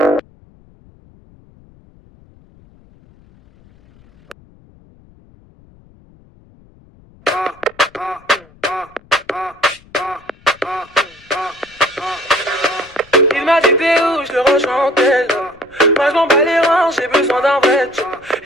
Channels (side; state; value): left; noise; rumble, 28 dB below the sound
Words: m'a dit t'es où, je le rejoins en tel. Moi je m'en bats les reins, j'ai besoin d'un vrai job.